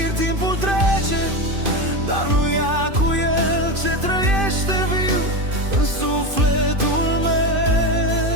Timpul trece, dar nu ia cu el ce trăiește viu în sufletul meu.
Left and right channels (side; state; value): left; late; 2.5 ms